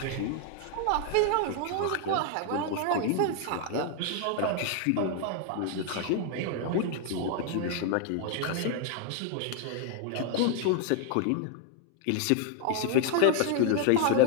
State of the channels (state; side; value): different; both; correlation 0.00